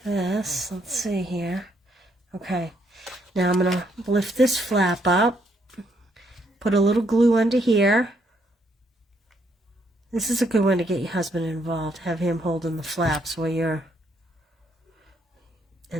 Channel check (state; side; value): normal; both; correlation 0.72